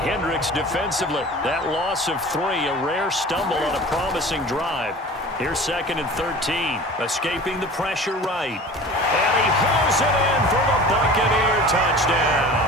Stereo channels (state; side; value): normal; both; correlation 0.40